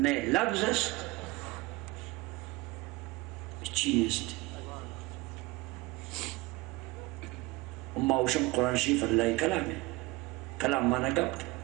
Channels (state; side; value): quieter; left; 21.9 dB